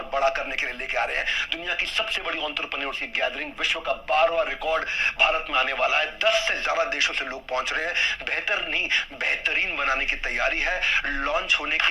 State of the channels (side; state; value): both; identical; correlation 1.00